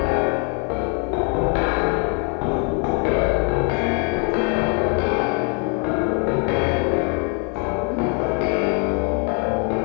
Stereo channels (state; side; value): quieter; right; 38.7 dB